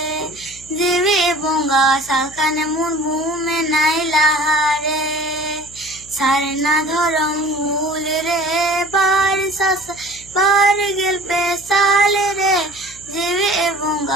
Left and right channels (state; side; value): noise; left; hum, 23 dB below the sound